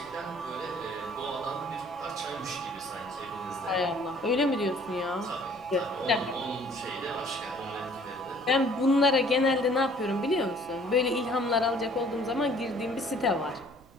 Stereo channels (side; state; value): right; noise; rumble, 25 dB below the sound